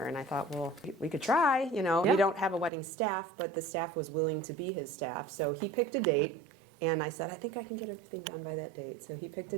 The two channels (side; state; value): left; drops out; at 2.7 s